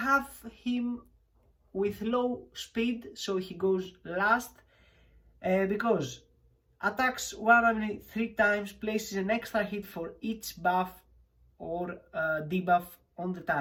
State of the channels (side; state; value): both; identical; correlation 1.00